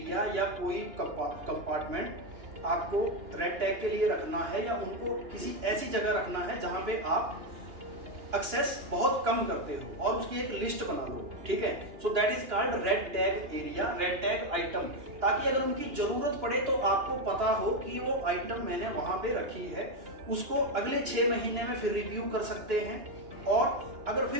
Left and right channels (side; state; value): left; late; 2.9 ms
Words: या कोई कंपार्टमेंट आपको रेड टैग के लिए रखना है, या उनको किसी ऐसी जगह रखना है जहां पे आप एक्सेस बहुत कम करते हो, और उसकी एक लिस्ट बना लो, ठीक है। सो that is called red tag area, red tag item, ताकि अगर उनकी जरूरत पड़े तो आपको पता हो कि वो आइटम मैंने वहां पे रखी है, उसको अगले 6 महीने में फिर रिव्यू कर सकते हैं। और अगर